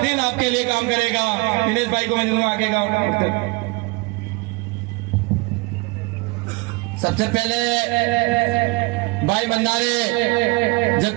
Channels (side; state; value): left; quieter; 25.7 dB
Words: आपके लिए काम करेगा। दिनेश भाई को मैं दूंगा आगे का। सबसे पहले भाई मंदारे